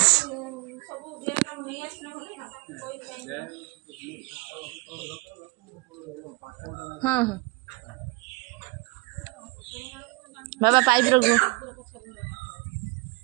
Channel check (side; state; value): left; quieter; 27.1 dB